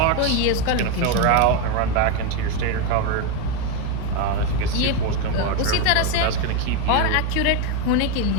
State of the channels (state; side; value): different; both; correlation 0.03